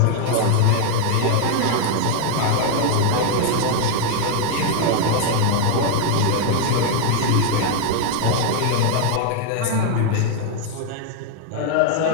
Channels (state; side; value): different; both; correlation 0.01